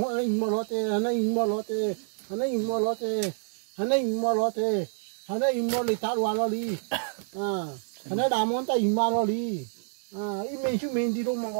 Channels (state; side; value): silent; left; digital silence